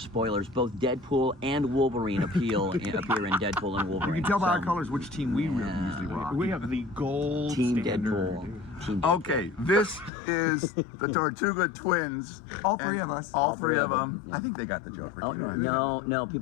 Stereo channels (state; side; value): drops out; right; at 10.1 s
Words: Both Deadpool and Wolverine appear in Deadpool and Wolverine. You can tell by our So, colors which team we usually rock. We have the gold Team standard. Deadpool. Team Deadpool. Okay, this is the Tortuga Twins. All three and of us. All three of them. Yeah. I think they got the joke. Oh, You know, no,